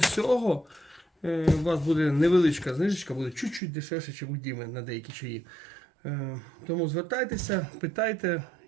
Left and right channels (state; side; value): drops out; left; at 3.6 s